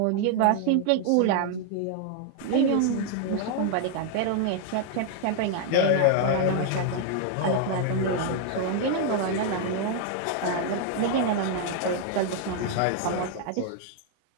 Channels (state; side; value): different; both; correlation 0.00